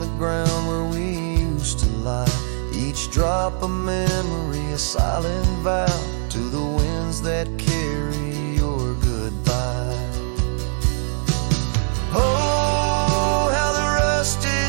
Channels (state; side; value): silent; left; 58 dB below the other